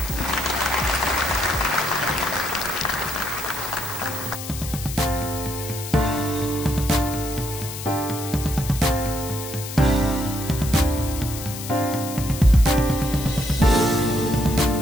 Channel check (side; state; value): left; noise; hiss, 10 dB below the sound